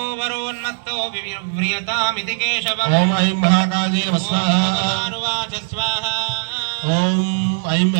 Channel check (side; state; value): left; silent; digital silence